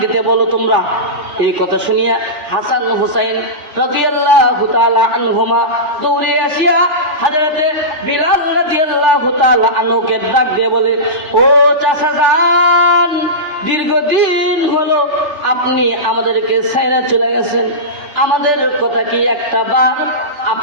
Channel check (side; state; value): left; late; 3.4 ms